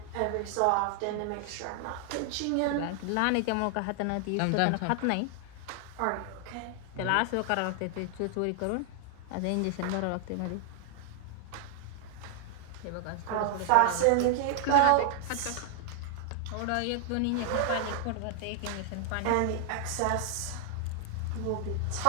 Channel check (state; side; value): different; both; correlation 0.00